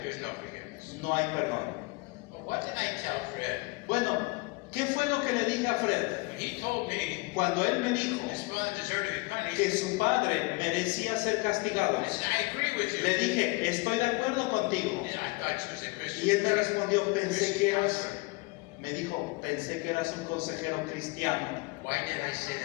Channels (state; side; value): quieter; right; 25.7 dB